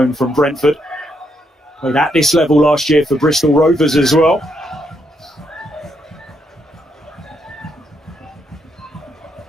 from Brentford. Played at this level last year for Bristol Rovers as well.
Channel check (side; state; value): both; normal; correlation 0.77